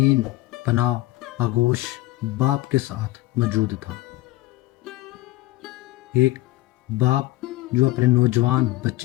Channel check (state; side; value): quieter; right; 18.0 dB